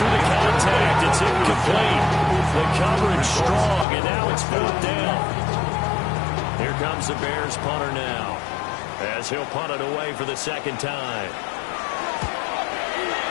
the contact. It's incomplete. The coverage strong, and now it's 4th down. Here comes the Bears punter now, as he'll punt it away for the second time.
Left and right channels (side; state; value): right; drops out; at 3.9 s